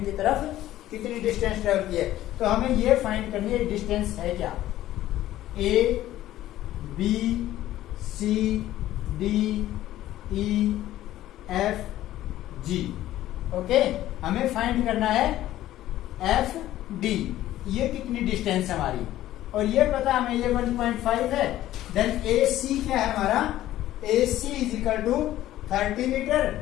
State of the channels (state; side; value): quieter; right; 14.0 dB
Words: की तरफ कितनी डिस्टेंस ट्रेवल की है। तो हमें ये फाइंड करनी है डिस्टेंस है क्या? A B C D E F G। Okay, हमें फाइंड करना है F D, ये कितनी डिस्टेंस हमारी, और ये पता हमें ये 1.5 है। देन AC क्या है हमारा? AC is equal to 30 metre